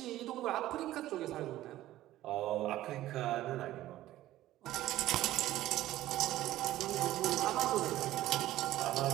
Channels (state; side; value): quieter; left; 14.8 dB